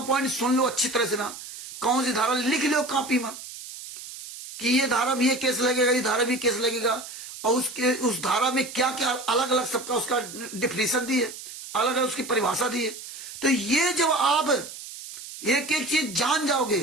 पॉइंट सुन लो अच्छी तरह से ना। कौन सी धारा लिख लो कॉपी में कि ये धारा में ये केस लगेगा, ये धारा भी केस लगेगा, और उस धारा में क्या क्या अलग अलग सबका उसका डिफिनेशन दी है, अलग अलग उसकी परिभाषा दी है। तो ये जब आप एक एक चीज जान जाओगे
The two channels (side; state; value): right; noise; hiss, 12 dB below the sound